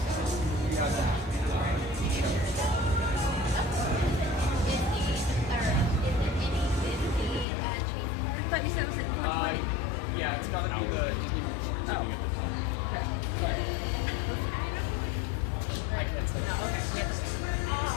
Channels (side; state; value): right; drops out; at 7.5 s